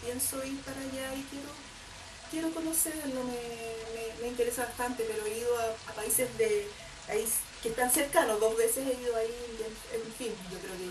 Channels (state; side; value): identical; both; correlation 1.00